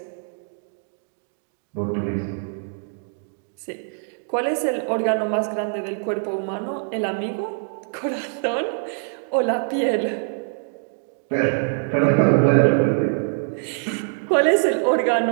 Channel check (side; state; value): left; silent; digital silence